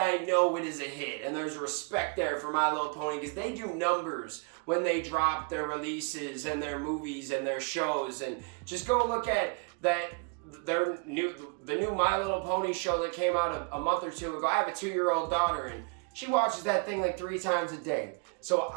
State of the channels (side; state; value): left; quieter; 34.5 dB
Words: know it is a hit. And there's respect there for My Little Pony because they do numbers when they drop their releases and their movies and their shows. And just go look at that, the new My Little Pony show that came out a month or two ago. I have a 2-year-old daughter, and she watches that thing like 3 times a day. So